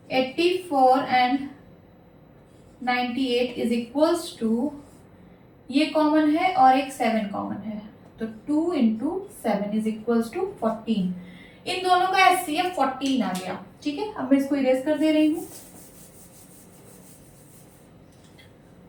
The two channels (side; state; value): both; identical; correlation 1.00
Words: 84 and 98 is equals to, ये कॉमन है और एक 7 कॉमन है, तो 2 इंटू 7 इज इक्वल्स टू 14। इन दोनों का HCF 14 आ गया। ठीक है, अब मैं इसको इरेज कर दे रही हूँ।